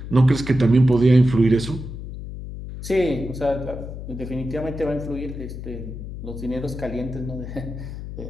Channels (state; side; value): noise; left; hum, 9 dB below the sound